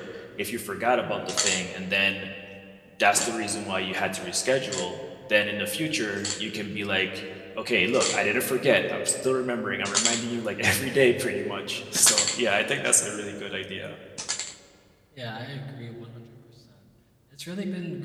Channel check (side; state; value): both; identical; correlation 1.00